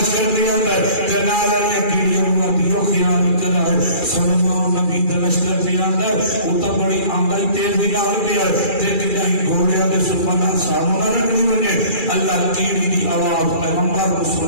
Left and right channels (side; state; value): right; late; 2.4 ms